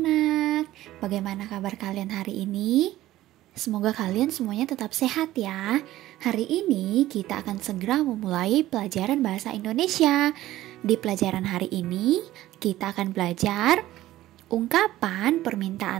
Bagaimana kabar kalian hari ini? Semoga kalian semuanya tetap sehat ya. Hari ini kita akan segera memulai pelajaran bahasa Indonesia. Di pelajaran hari ini, kita akan belajar ungkapan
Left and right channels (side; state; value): left; quieter; 15.2 dB